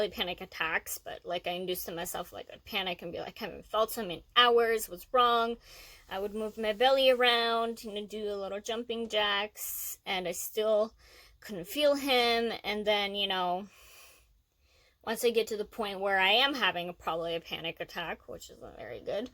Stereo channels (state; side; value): identical; both; correlation 1.00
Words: panic attacks, but like I induced to myself, like I'd panic and be like, I haven't felt him in hours, what's wrong? I would move my belly around, do a little jumping jacks, and I still couldn't feel him. And then, once I get to the point where I am having probably a panic attack, which isn't very good,